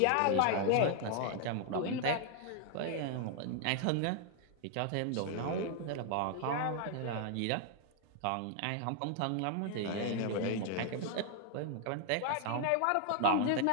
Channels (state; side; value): different; both; correlation 0.00